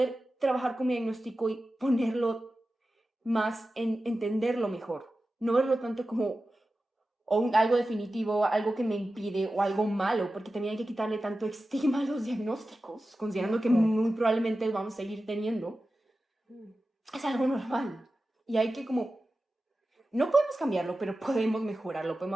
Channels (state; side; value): normal; both; correlation 0.94